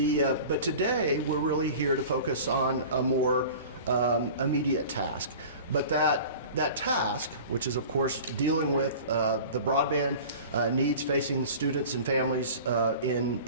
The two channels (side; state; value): both; inverted; correlation -0.39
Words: today, we're really here to focus on a more immediate task. But that task, which is of course dealing with the broadband needs facing students and families